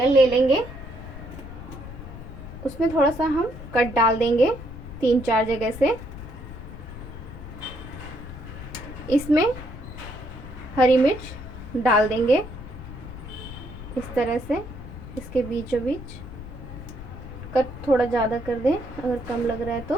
ले लेंगे, उसमें थोड़ा सा हम कट डाल देंगे 3-4 जगह से। इसमें हरी मिर्च डाल देंगे इस तरह से, इसके बीचों बीच। कट थोड़ा ज़्यादा कर दें अगर कम लग रहा है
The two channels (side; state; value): left; noise; rumble, 12 dB below the sound